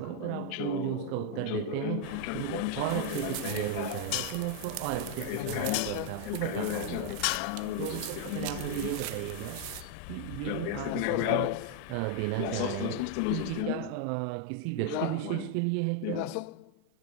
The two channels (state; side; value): different; both; correlation 0.00